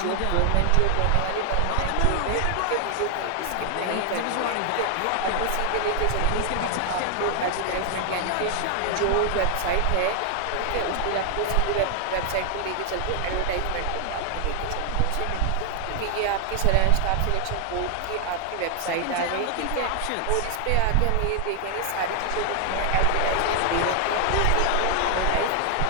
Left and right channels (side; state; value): both; different; correlation 0.00